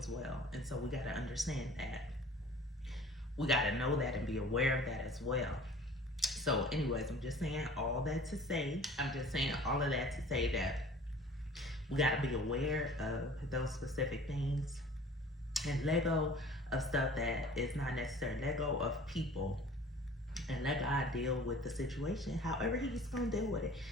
well. And so we got to understand that. We got to know that and be aware of that as well. So, anyways, I'm just saying all that to say, I'm just saying all of that to say that we got to be aware of those specific things and let go of stuff that is not necessary. Let go of people and let God deal with the situation however He's going to deal with it.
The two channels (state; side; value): normal; both; correlation 0.47